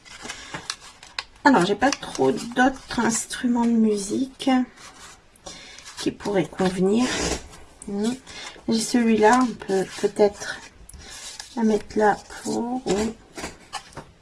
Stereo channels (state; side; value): identical; both; correlation 1.00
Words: Alors, j'ai pas trop d'autres instruments de musique qui pourraient convenir. J'ai celui-là, on peut peut-être la mettre là pour...